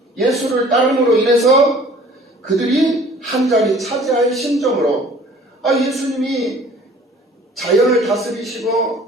예수를 따름으로 인해서 그들이 한 자리 차지할 심정으로 예수님이 자연을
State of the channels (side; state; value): both; normal; correlation 0.51